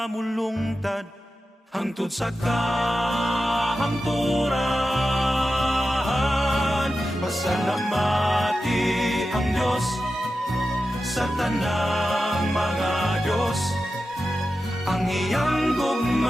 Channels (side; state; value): both; normal; correlation 0.92